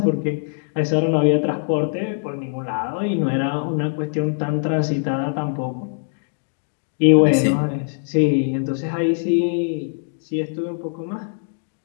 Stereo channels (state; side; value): silent; right; digital silence